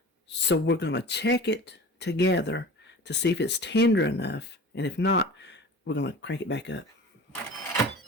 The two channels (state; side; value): normal; both; correlation 0.37